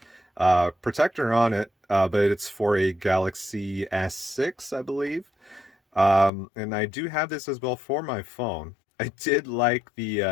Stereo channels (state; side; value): drops out; right; at 6.3 s